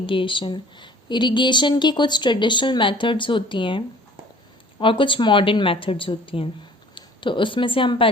Irrigation की कुछ traditional methods होती हैं और कुछ modern methods होती हैं. तो उसमें से हम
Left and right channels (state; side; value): normal; both; correlation 0.50